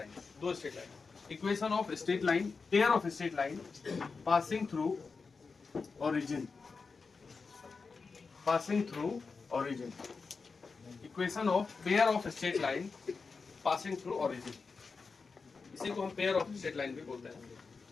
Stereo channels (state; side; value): quieter; right; 4.7 dB